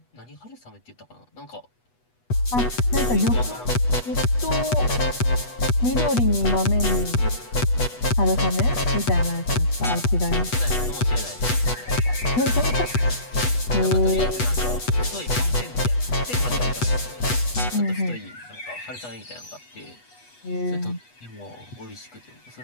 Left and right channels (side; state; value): right; late; 8.2 ms